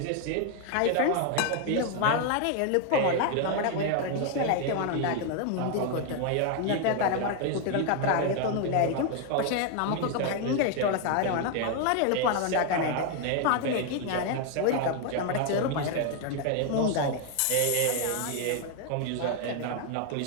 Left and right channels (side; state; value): both; different; correlation 0.01